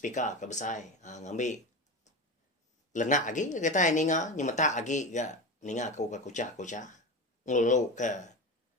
ke besar ngambil lenak lagi kita ninga nyemata lagi ga ninga ku ka kuca ngulu ke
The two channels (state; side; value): normal; both; correlation 0.24